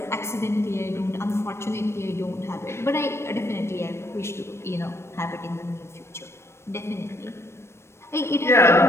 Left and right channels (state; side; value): late; right; 0.13 ms